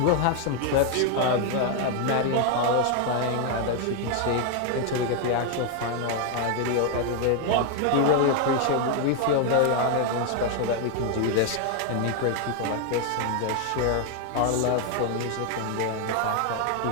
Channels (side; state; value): both; different; correlation 0.01